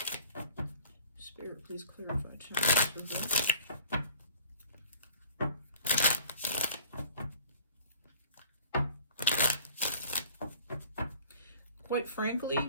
Spirit, please clarify Temperance reverse. Quite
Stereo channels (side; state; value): both; inverted; correlation -0.47